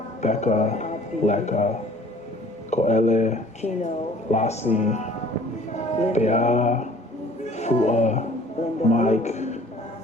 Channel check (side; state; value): both; normal; correlation 0.52